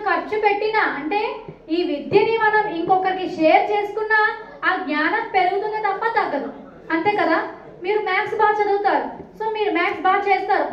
ఖర్చు పెట్టినా అంటే ఈ విద్యని మనం ఇంకొకరికి షేర్ చేసుకున్నా ఆ జ్ఞానం పెరుగుతుంది తప్ప తగ్గదు. అంతే కదా. మీరు మ్యాథ్స్ బాగా చదువుతారు, సో మీరు మ్యాథ్స్ బాగా చేస్తారు,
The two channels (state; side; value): identical; both; correlation 1.00